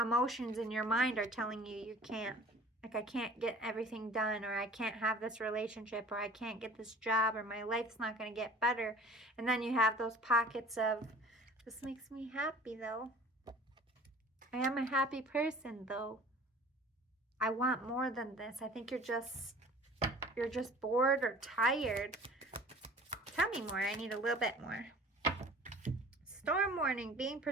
in your mind are telling you you can't. Like, I can't get everything done, or I can't have this relationship, or I can't get this job, or my life's not going to get better. And then you have those pockets of, this makes me happy though. I am a happy person though. I want more than this. I think you're just bored or tired. Tell me more. I need a little bit more. Storm warning, being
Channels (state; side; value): normal; both; correlation 0.47